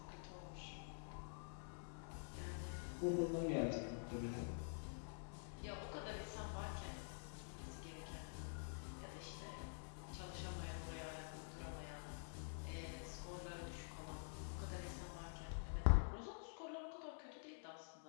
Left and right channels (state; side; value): silent; right; digital silence